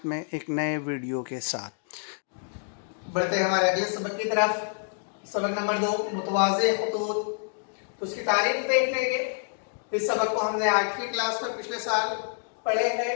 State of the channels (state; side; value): silent; right; digital silence